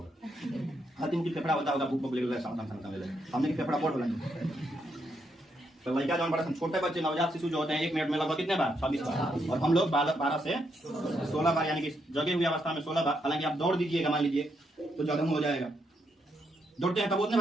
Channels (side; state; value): both; normal; correlation 0.79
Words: हर टिमकी फेफड़ा होता होगा, भूख ले हमने की फेफड़ा बोल बोला। तो लड़का जो बड़ा सन, छोटे बच्चे नवजात शिशु जो होते हैं 1 मिनट में लगभग कितने बार? 26 बार। और हम लोग 12 से 16 बार, यानी कि जगे हुई अवस्था में 16 बार। हालांकि आप दौड़ दीजिएगा मान लीजिए तो ज्यादा हो जाएगा। दौड़ते हैं तब उतने